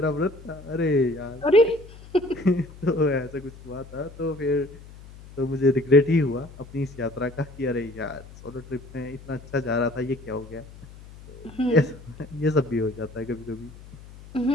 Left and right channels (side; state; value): left; noise; hum, 18 dB below the sound